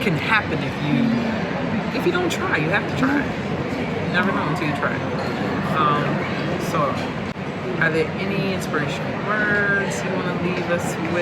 can happen if you don't try. You have to try. You never know until you try. So are there any inspirational words you want to leave us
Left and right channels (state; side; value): identical; both; correlation 1.00